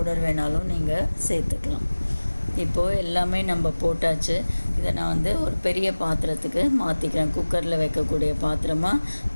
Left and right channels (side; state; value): both; inverted; correlation -1.00